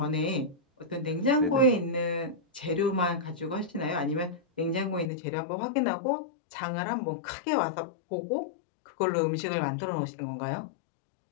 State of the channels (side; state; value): right; drops out; at 5.1 s